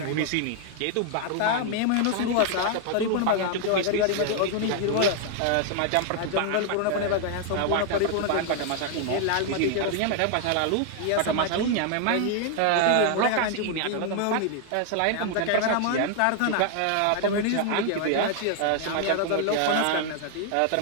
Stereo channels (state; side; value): different; both; correlation 0.00